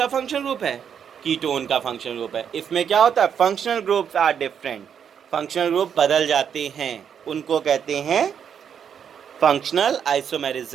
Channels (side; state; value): left; quieter; 7.9 dB